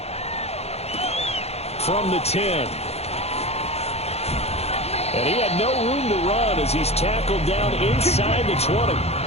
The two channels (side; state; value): right; late; 0.30 ms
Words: From the 10. And he had no room to run as he's tackled down inside the 20.